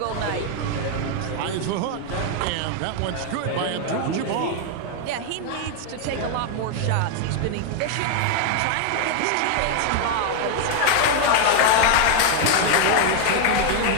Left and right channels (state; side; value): different; both; correlation 0.00